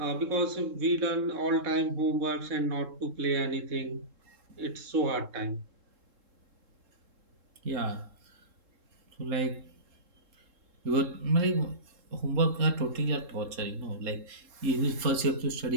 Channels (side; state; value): left; late; 3.7 ms